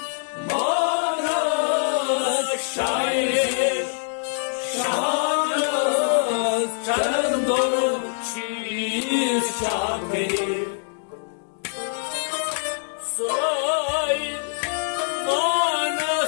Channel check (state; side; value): silent; right; digital silence